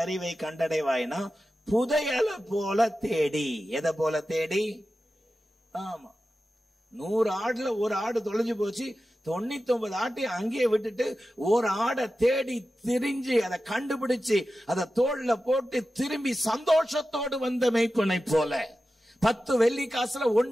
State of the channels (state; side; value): normal; both; correlation 0.93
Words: அறிவை கண்டடைவாய்னா புதையலை போல தேடி. எதை போல தேடி? ஆமா, 100 ஆடுல ஒரு ஆடு தொலைஞ்சு போச்சு, 99 ஆட்டை அங்கேயே விட்டுட்டு ஒரு ஆடை தேடி திரிஞ்சு அதை கண்டுபிடிச்சு அதை தோல்ல போட்டு திரும்பி சந்தோஷத்தோடு வந்த மேய்ப்பனை போல. 10 வெள்ளி காசுல